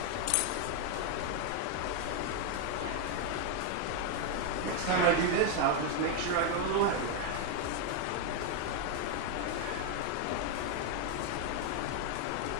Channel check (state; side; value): different; both; correlation 0.01